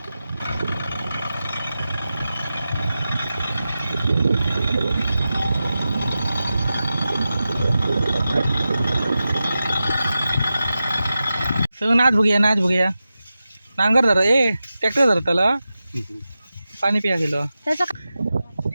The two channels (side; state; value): both; inverted; correlation -0.93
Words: सगळं नाच बघूया नांगर धर ए ट्रॅक्टर धर त्याला पाणी पिया गेलो